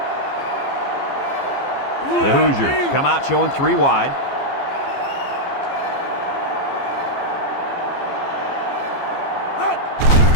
The Hoosiers come out showing 3 wide.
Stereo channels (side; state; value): right; late; 15 ms